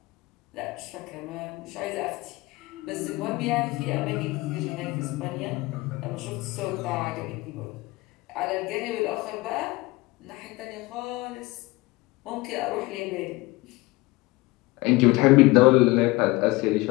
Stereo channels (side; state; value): right; quieter; 21.6 dB